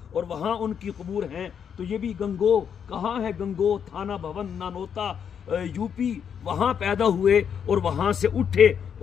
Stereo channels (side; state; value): right; quieter; 7.7 dB